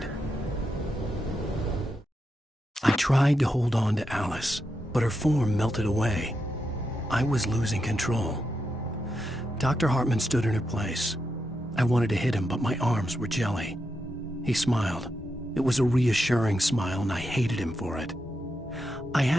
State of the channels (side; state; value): both; normal; correlation 0.85